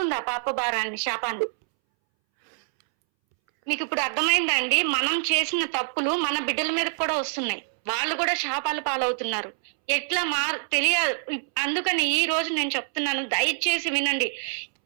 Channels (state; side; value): silent; left; 61 dB below the other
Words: పాప భారాన్ని, శాపాన్ని? మీకు ఇప్పుడు అర్థమైందండి? మనం చేసిన తప్పులు మన బిడ్డల మీద కూడా వస్తున్నాయి, వాళ్ళు కూడా శాపాలు పాలవుతున్నారు. ఎట్లా తెలియదు. అందుకని ఈ రోజు నేను చెప్తున్నాను, దయచేసి వినండి.